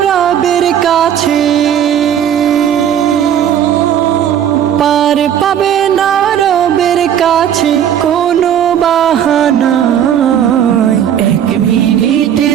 রবের কাছে, পার পাবে না রবের কাছে কোনো বাহানা। এক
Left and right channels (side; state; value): left; quieter; 9.6 dB